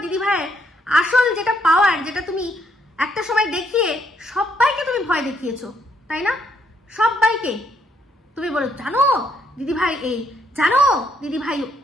দিদিভাইয়ের আসল যেটা পাওয়ার, যেটা তুমি একটা সময় দেখিয়ে সবাইকে তুমি ভয় দেখিয়েছো, তাই না? সবাইকে তুমি বলো জানো দিদিভাই এই, জানো দিদিভাই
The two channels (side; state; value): both; normal; correlation 0.73